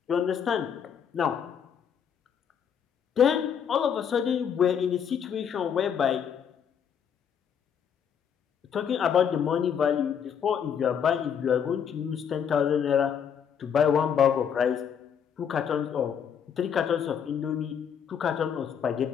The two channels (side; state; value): right; quieter; 7.8 dB